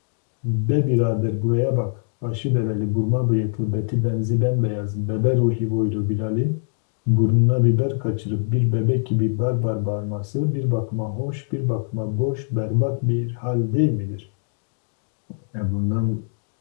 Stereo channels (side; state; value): right; silent; digital silence